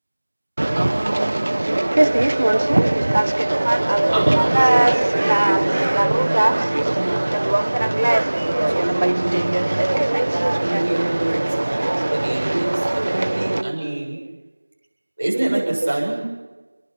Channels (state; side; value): inverted; both; correlation -1.00